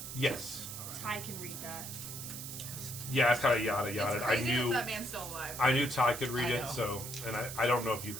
Yes. Ty can read that. Yeah, it's kind of yada It's yada. crazy that that man's still alive. I knew Ty could read I it, know. so, and I don't know if you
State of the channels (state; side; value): noise; right; hiss, 8 dB below the sound